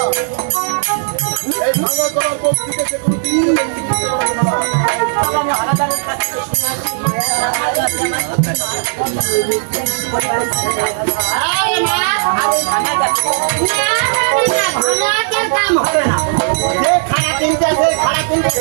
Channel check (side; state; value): left; silent; digital silence